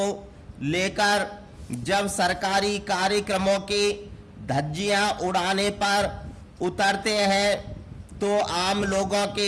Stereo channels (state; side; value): identical; both; correlation 1.00